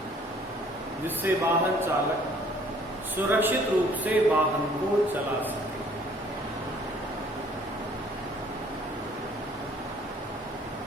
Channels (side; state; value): both; normal; correlation 0.57